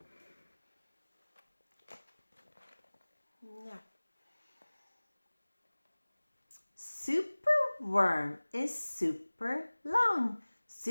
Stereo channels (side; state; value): both; inverted; correlation -1.00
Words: Superworm is super long.